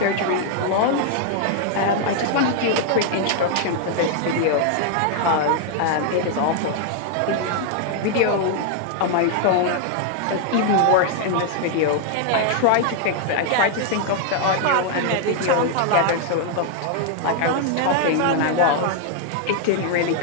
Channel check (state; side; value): different; both; correlation 0.00